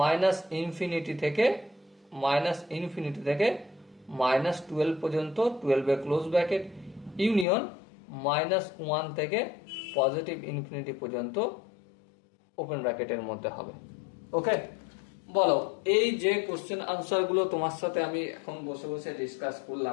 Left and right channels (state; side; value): drops out; right; at 7.5 s